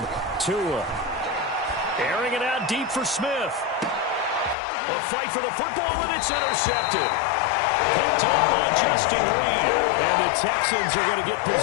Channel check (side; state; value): right; drops out; at 4.5 s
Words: Tua. Airing it out deep for Smith. A fight for the football, and it's intercepted. Picked up by Justin Reed. And the Texans are going to get